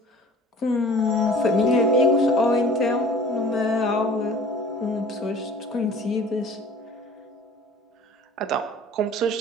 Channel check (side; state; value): both; normal; correlation 0.46